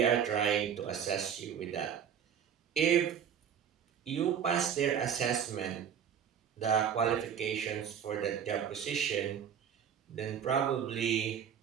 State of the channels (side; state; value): left; quieter; 8.3 dB